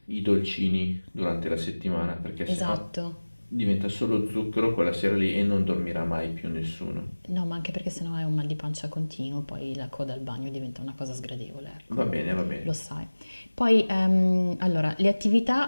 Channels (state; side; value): inverted; both; correlation -1.00